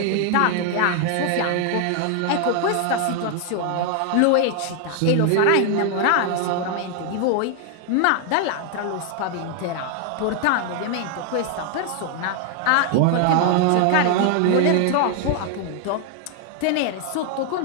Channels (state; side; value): different; both; correlation 0.00